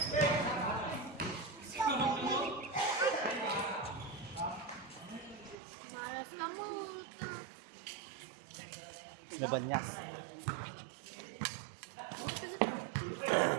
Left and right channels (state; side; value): drops out; left; at 5.6 s